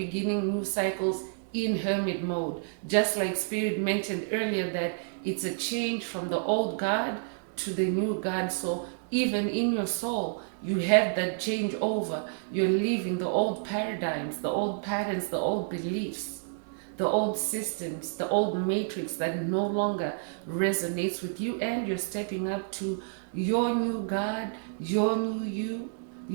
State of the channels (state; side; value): silent; left; 58 dB below the other